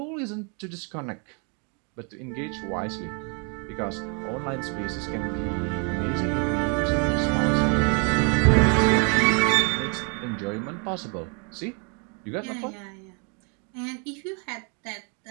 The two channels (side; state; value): left; quieter; 36.4 dB